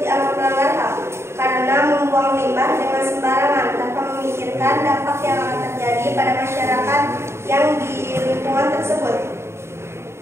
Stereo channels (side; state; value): left; late; 0.13 ms